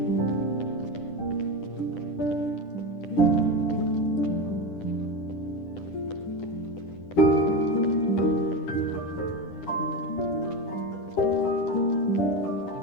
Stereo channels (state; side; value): late; right; 10 ms